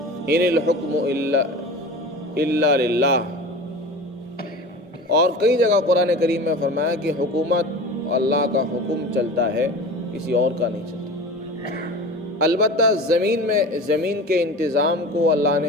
ان الحکم الا للہ۔ اور کئی جگہ قرآن کریم میں فرمایا کہ حکومت اللہ کا حکم چلتا ہے، کسی اور کا نہیں چلتا۔ البتہ زمین کے انتظام کو اللہ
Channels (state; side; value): normal; both; correlation 0.34